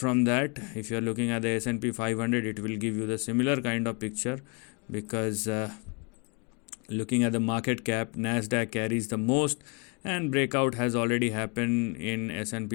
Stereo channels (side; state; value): right; quieter; 33.0 dB